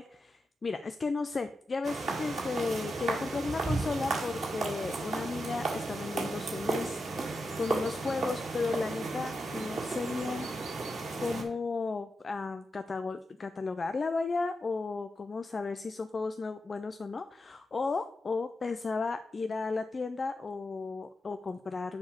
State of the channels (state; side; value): normal; both; correlation 0.88